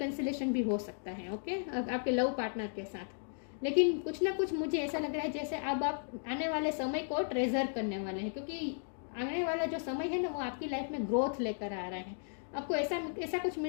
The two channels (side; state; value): right; silent; digital silence